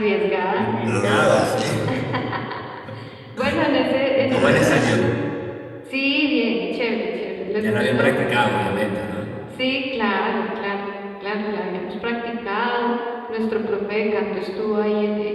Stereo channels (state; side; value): identical; both; correlation 1.00